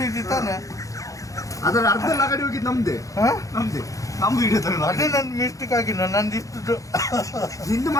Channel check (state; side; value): late; right; 0.16 ms